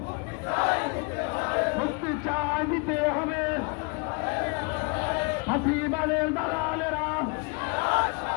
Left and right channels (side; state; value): right; quieter; 33.0 dB